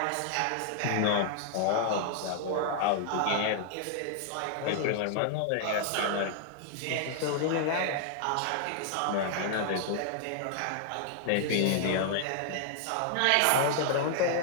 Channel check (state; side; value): different; both; correlation -0.01